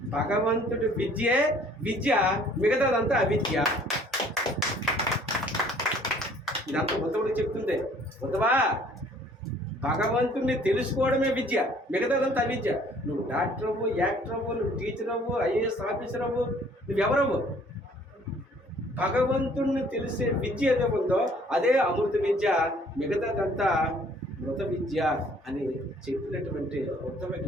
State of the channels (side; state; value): both; normal; correlation 0.57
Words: భగవంతుడి విద్యే విద్య, మిగతాదంతా అవిద్య. ఇదంతా ఉద్ధవుడికి చెప్తుంది. ఉద్ధవా, భగవంతుడిని తెలుసుకోవడమే విద్య, మిగతాదంతా అవిద్య. నువ్వు డాక్టర్ అవ్వు, యాక్టర్ అవ్వు, నువ్వు టీచర్ అవ్వు, ఐఏఎస్ ఆఫీసర్ అవ్వు, నువ్వెవరవ్వు. భగవంతుడిని తెలిసే విద్య ఏదో ఉందో అదే అమృత విద్య, మిగతాదంతా మృత విద్య అని చెప్పినటువంటి ఉత్తమ